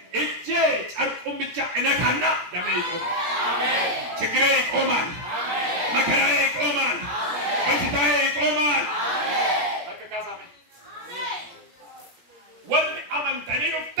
እጄ ጨርቁን ብቻ እነካና ደሜ ይቆማል አሜን ችግሬ ይቆማል አሜን መከራዬ ይቆማል አሜን በሽታዬ ይቆማል አሜን አከካሳሜ ወር አመንተኒ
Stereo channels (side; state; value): left; late; 17 ms